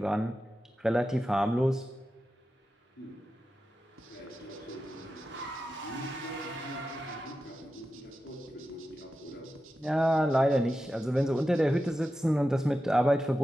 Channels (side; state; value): both; normal; correlation 0.91